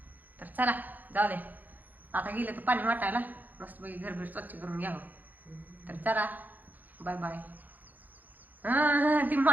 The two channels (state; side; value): late; left; 0.083 ms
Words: तर चला जाऊ दे, आता गेलं तर पाणी वाटायला मस्तपैकी घरभर स्वच्छ करून घ्यावं. तर चला बाय बाय. ती